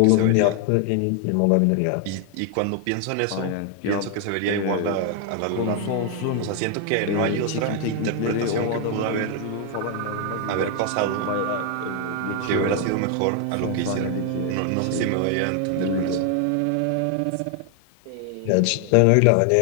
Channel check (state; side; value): different; both; correlation 0.00